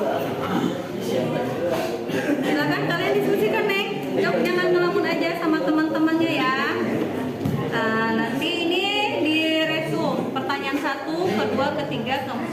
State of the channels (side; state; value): both; identical; correlation 1.00